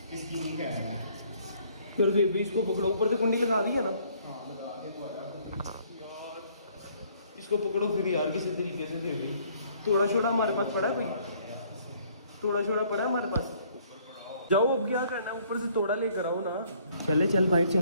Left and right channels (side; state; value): both; inverted; correlation -0.62